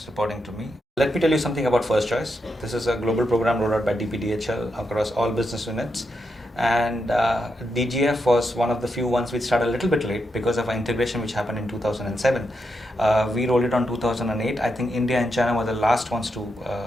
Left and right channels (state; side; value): normal; both; correlation 0.84